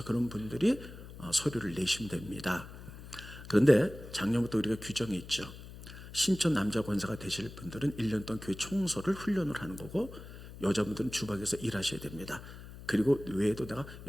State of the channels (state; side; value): noise; left; hum, 14 dB below the sound